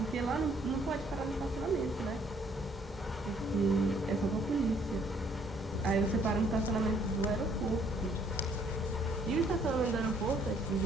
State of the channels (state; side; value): normal; both; correlation 0.64